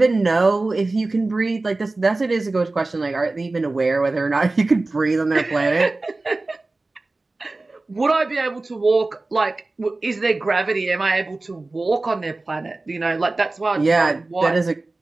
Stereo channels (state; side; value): quieter; left; 3.2 dB